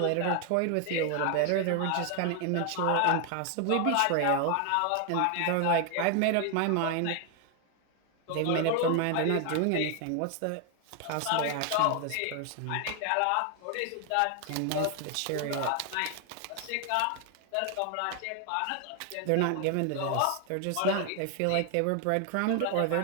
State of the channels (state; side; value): different; both; correlation 0.00